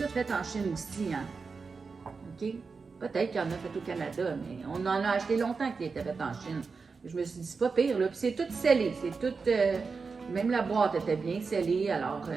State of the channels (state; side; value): quieter; left; 4.8 dB